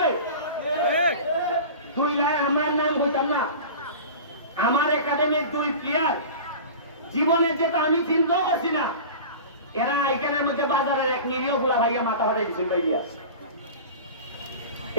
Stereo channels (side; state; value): both; inverted; correlation -0.35